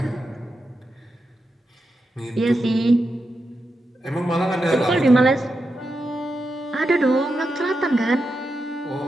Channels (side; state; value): both; normal; correlation 0.87